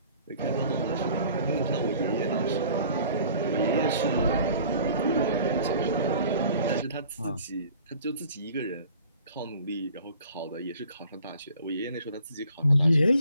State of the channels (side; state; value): both; inverted; correlation -0.51